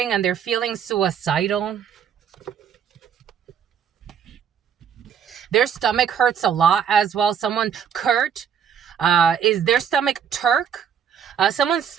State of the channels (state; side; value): quieter; left; 8.0 dB